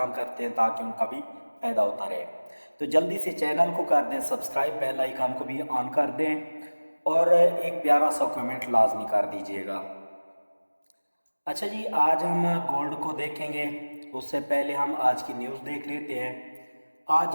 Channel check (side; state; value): both; inverted; correlation -1.00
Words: करते हैं ताकि उनका भी फ़ायदा होता रहे, तो जल्दी से चैनल को कर दें सब्सक्राइब, बेल आइकन को भी ऑन कर दें और एक प्यारा सा कमेंट लाजमी कर दीजिएगा। अच्छा जी, आज हम गोल्ड को देखेंगे। उससे पहले हम आज की न्यूज़ देख लेते हैं। आज